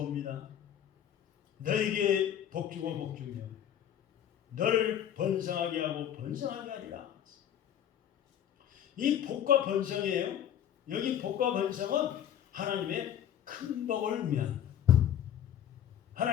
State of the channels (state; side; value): quieter; right; 10.2 dB